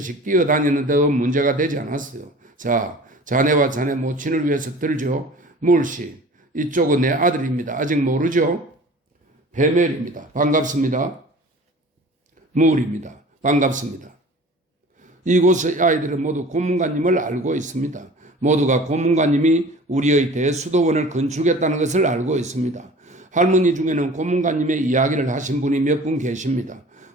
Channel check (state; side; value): normal; both; correlation 0.43